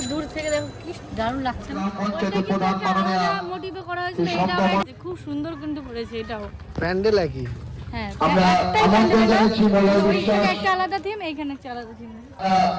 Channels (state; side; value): identical; both; correlation 1.00